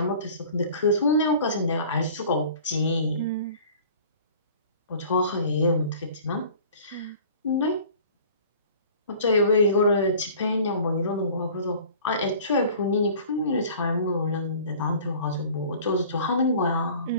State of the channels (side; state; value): both; inverted; correlation -0.47